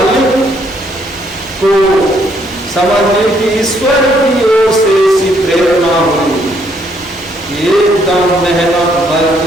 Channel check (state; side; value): normal; both; correlation 0.70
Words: को समझने की ईश्वर की ओर से ऐसी प्रेरणा हुई, एकदम मेहनत